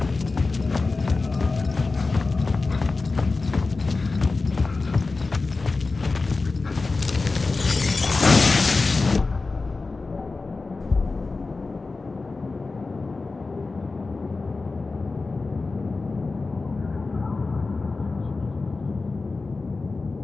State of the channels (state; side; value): quieter; right; 3.8 dB